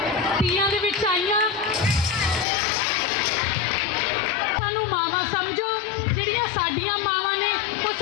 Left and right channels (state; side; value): drops out; right; at 2.5 s